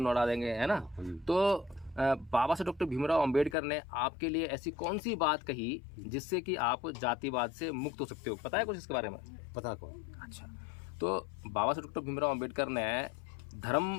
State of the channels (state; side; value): drops out; right; at 3.6 s